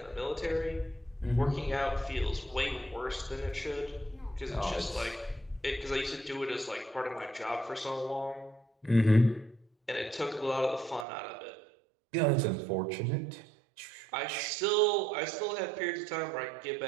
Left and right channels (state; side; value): drops out; left; at 11.1 s